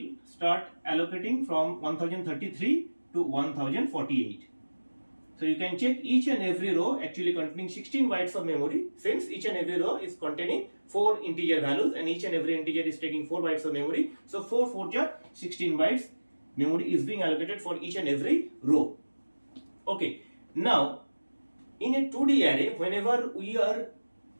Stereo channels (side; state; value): both; inverted; correlation -1.00